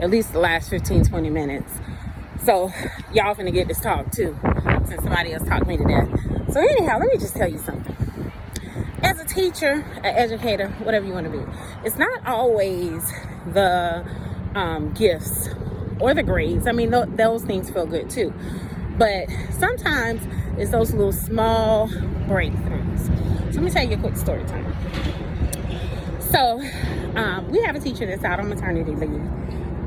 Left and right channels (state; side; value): identical; both; correlation 1.00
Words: least the last 15, 20 minutes. So, y'all finna get this talk too, since somebody else talked me to death. So anyhow, let me just tell you something. As a teacher, an educator, whatever you want to be, it's not always the gifts or the grades. I mean, those things feel good too. But sometimes it's those little small breakthroughs. So let me tell you a quick story time. So we have a teacher that's out on maternity leave.